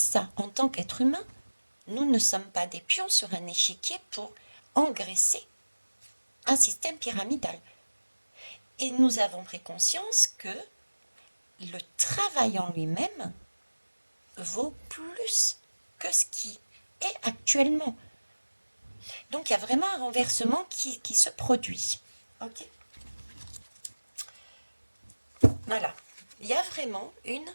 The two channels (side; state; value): both; inverted; correlation -1.00